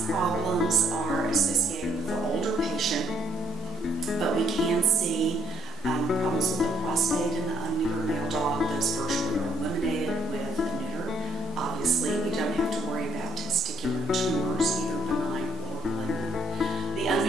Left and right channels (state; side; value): normal; both; correlation 0.66